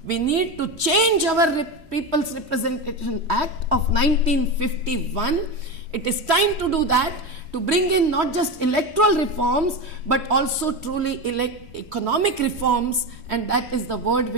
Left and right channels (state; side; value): late; left; 3.1 ms